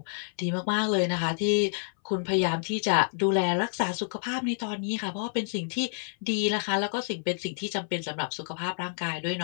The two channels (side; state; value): right; silent; 59 dB below the other